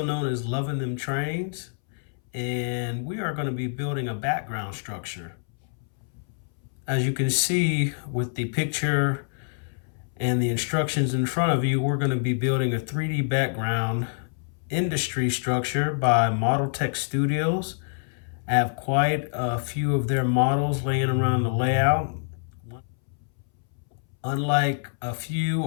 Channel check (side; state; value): right; silent; 61 dB below the other